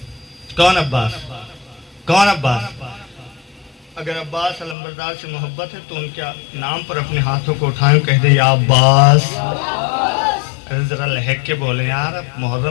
کون عباس؟ کون عباس؟ اگر عباس علمبردار سے محبت ہے تو ان کے نام پر اپنے ہاتھوں کو اٹھائیں، کہہ دے یا عباس. ذرا لہک کے بولیں یار، اب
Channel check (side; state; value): right; drops out; at 4.8 s